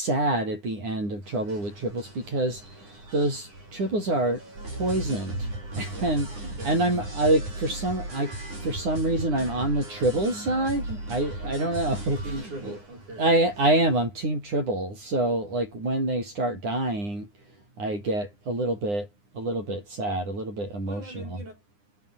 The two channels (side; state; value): left; late; 9.8 ms